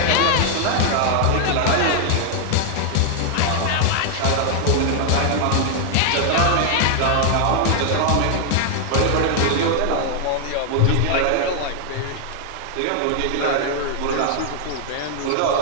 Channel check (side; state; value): both; different; correlation 0.00